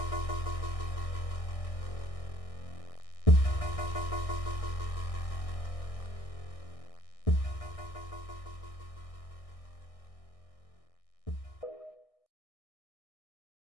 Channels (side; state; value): right; late; 1.6 ms